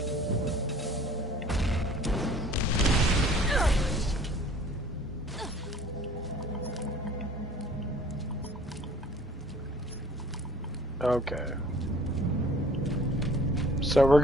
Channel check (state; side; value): normal; both; correlation 0.51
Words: Okay. So we're